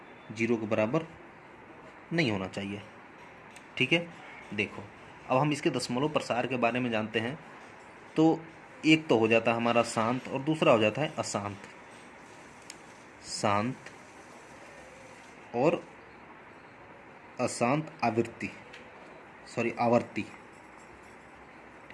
0 के बराबर नहीं होना चाहिए। ठीक है, देखो अब हम इसके दशमलव प्रसार के बारे में जानते हैं। तो एक तो हो जाता है हमारा शांत और दूसरा हो जाता है अशांत। शांत और अशांत आवर्ती।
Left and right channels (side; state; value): both; identical; correlation 1.00